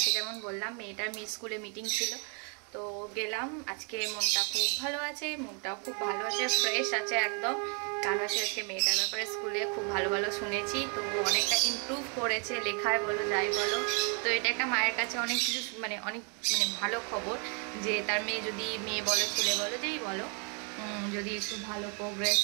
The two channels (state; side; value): quieter; left; 37.8 dB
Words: যেমন বললাম মেয়েটার স্কুলে মিটিং ছিল, তো গেলাম। আজকে মনটা খুব ভালো আছে, মনটাও খুব ভালো আছে, ফ্রেশ আছে একদম। কারণ হচ্ছে আজকে মেয়েটার ব্যাপারে স্কুলে খুব ভালো ভালো শুনেছি, তো অনেকটা ইমপ্রুভ করেছে লেখায় বলো যাই বলো। তো এটা একটা মায়ের কাছে অনেক কিছু অনেক ভালো খবর যে তার মেয়ে, যদি মেয়ে বলো ছেলে বলো যেই বলো, যদি একটু ভালো প্রোগ্রেস